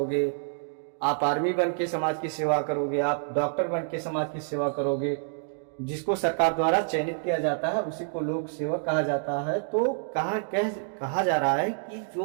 आप आर्मी बन के समाज की सेवा करोगे, आप डॉक्टर बन के समाज की सेवा करोगे, जिसको सरकार द्वारा चयनित किया जाता है उसी को लोक सेवक कहा जाता है। तो कहा जा रहा है कि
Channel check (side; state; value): left; silent; digital silence